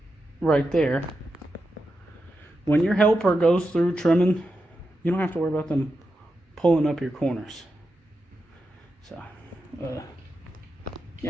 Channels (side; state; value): both; normal; correlation 0.88